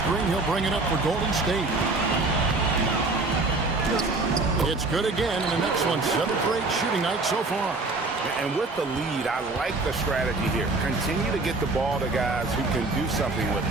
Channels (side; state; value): left; quieter; 3.4 dB